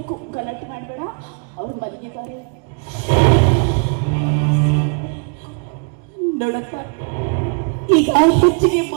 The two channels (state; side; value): quieter; left; 37.9 dB